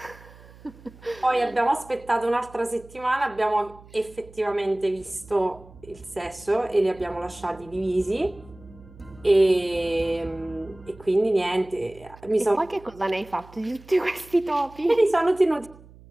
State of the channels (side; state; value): right; noise; hum, 22 dB below the sound